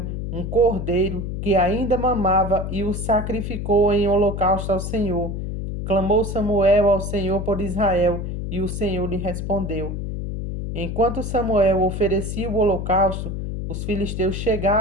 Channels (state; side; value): noise; left; hum, 4 dB below the sound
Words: um cordeiro que ainda mamava e o sacrificou em holocausto ao Senhor. Clamou Samuel ao Senhor por Israel, e o Senhor lhe respondeu. Enquanto Samuel oferecia o holocausto, os filisteus